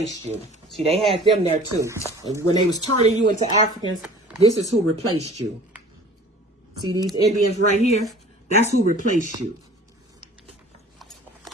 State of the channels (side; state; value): both; normal; correlation 0.46